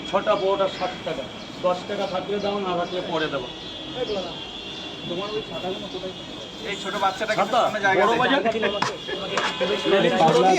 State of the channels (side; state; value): both; identical; correlation 1.00